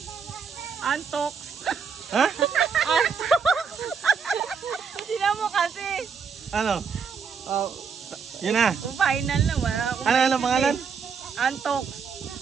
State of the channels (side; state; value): left; quieter; 6.1 dB